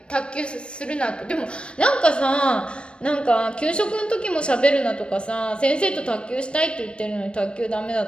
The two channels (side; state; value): right; late; 0.057 ms